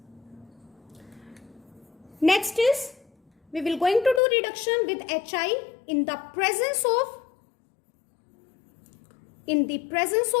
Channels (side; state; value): right; drops out; at 4.2 s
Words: Next is, we will going to do reduction with Hi in the presence